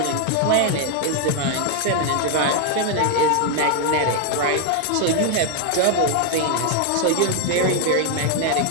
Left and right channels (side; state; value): both; different; correlation 0.01